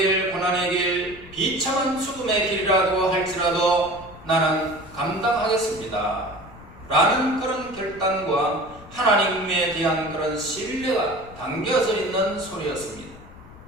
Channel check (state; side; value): noise; left; rumble, 19 dB below the sound